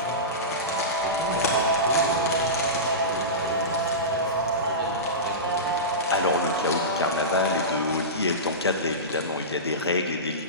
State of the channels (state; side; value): normal; both; correlation -0.19